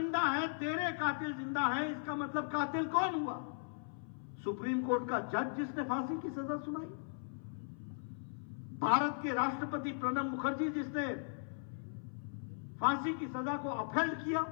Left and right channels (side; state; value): right; silent; 53 dB below the other